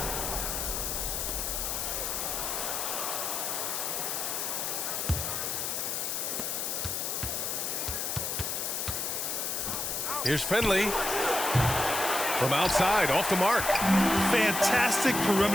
Here's Finley. From outside, off the mark. Fantastic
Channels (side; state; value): left; noise; hiss, 1 dB below the sound